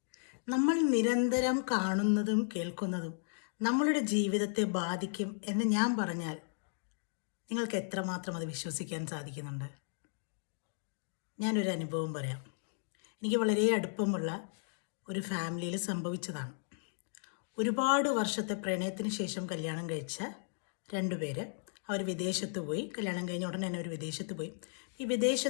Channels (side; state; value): right; silent; digital silence